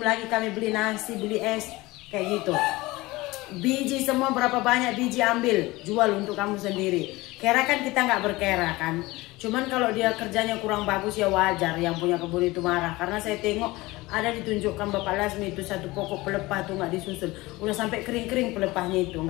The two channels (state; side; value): quieter; right; 20.6 dB